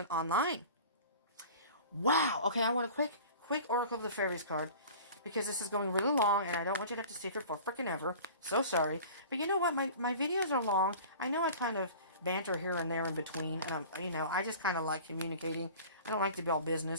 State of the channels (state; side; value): inverted; both; correlation -0.41